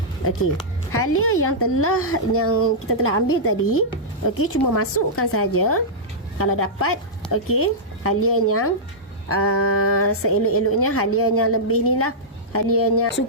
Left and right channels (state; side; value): normal; both; correlation -0.12